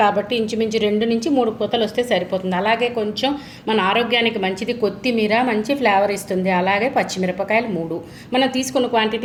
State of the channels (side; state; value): both; identical; correlation 1.00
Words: కాబట్టి ఇంచుమించు 2 నుంచి 3 పూతలు వస్తే సరిపోతుంది. అలాగే కొంచెం మన ఆరోగ్యానికి మంచిది కొత్తిమీర, మంచి ఫ్లేవర్ ఇస్తుంది. అలాగే పచ్చిమిరపకాయలు 3, మనం తీసుకున్న